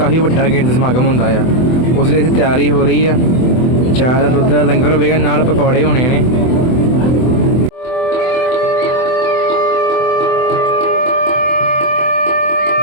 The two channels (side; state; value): right; late; 24 ms